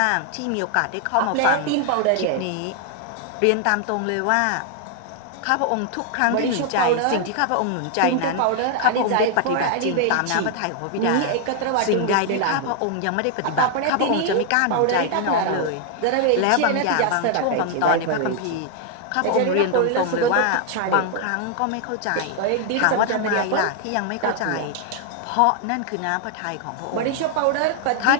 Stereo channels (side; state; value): both; different; correlation 0.00